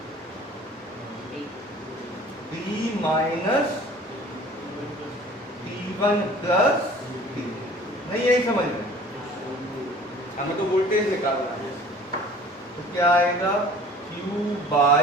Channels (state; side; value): normal; both; correlation 0.48